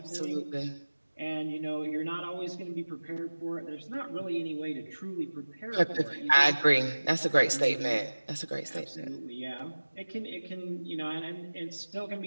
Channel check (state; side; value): inverted; both; correlation -1.00